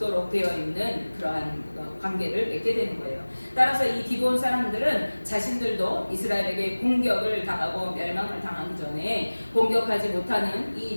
되어 있는 그러한 관계를 맺게 되는 거예요. 따라서 이 기브온 사람들은 자신들도 이스라엘에게 공격을 당하고 멸망을 당하기 전에 공격하지 못하는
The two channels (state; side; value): inverted; both; correlation -1.00